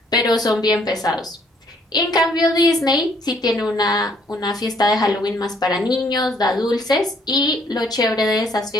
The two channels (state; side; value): normal; both; correlation 0.65